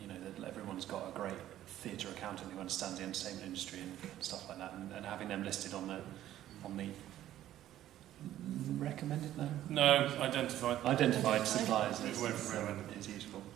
That everyone's got a great theatre accountant who understands the entertainment industry and stuff like that, and having them listed on the recommended identified suppliers is useful.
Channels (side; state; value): left; quieter; 12.8 dB